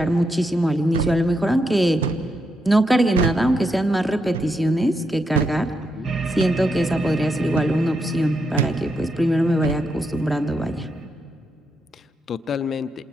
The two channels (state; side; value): normal; both; correlation 0.82